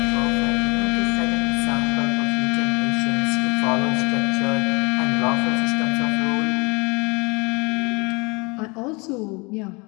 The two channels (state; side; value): quieter; right; 28.3 dB